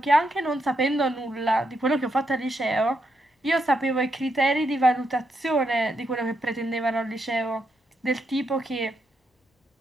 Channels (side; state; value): both; normal; correlation 0.80